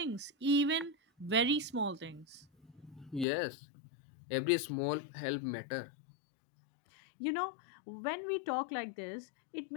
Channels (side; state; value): right; drops out; at 3.2 s